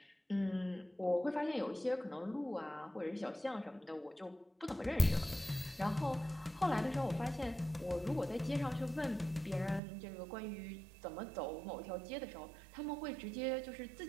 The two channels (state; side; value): drops out; left; at 9.8 s